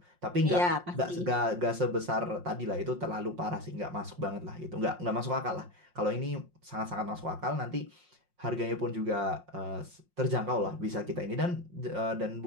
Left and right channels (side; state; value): left; late; 5.6 ms